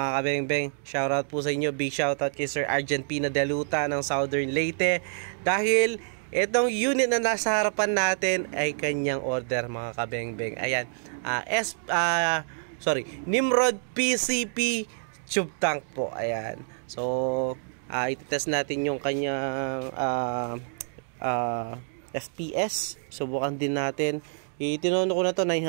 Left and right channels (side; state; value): left; silent; digital silence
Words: kabengbeng, shoutout po sa inyo, big shoutout kay Sir Argent Pina Deluta ng Southern Leyte. Dahil itong unit na nasa harapan natin ay kanyang order mga kabengbeng. Ayan, Nimrod PCP tube tank po. Ayan, so ititest natin yung kanyang FPS. Subukan din natin. Itinono ko na to